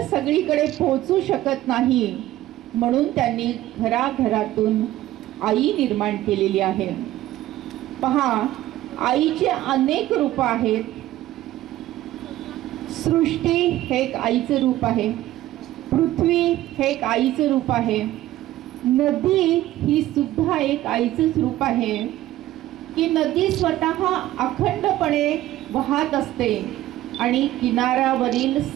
सगळीकडे पोहोचू शकत नाही, म्हणून त्यांनी घराघरातून आई निर्माण केलेली आहे. पहा, आईचे अनेक रूप आहेत. सृष्टी हे एक आईचं रूप आहे, पृथ्वी हे एक आईचं रूप आहे, नदी ही सुद्धा एक आईचंच रूप आहे. की नदी स्वतः अखंडपणे वाहत असते आणि किनाऱ्यावरील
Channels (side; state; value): left; quieter; 14.9 dB